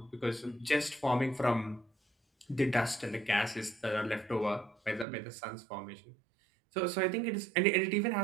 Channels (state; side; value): drops out; left; at 5.1 s